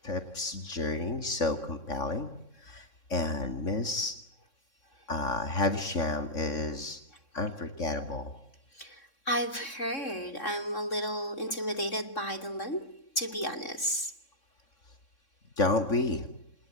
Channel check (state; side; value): late; right; 3.6 ms